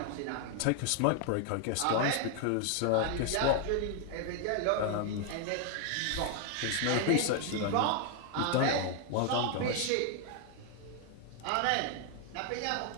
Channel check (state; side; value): different; both; correlation 0.00